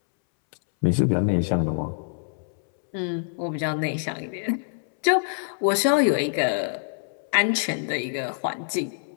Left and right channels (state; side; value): silent; right; 61 dB below the other